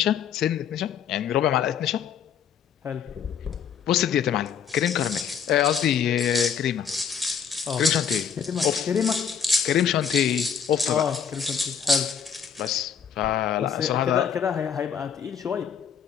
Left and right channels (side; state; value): right; quieter; 7.6 dB